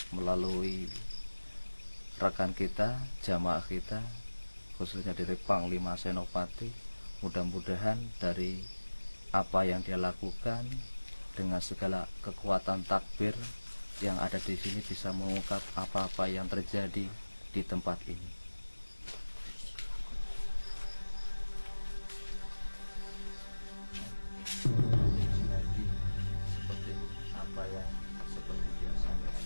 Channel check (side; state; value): both; inverted; correlation -1.00